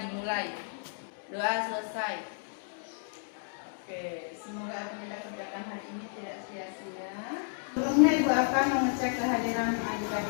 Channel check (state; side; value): silent; right; digital silence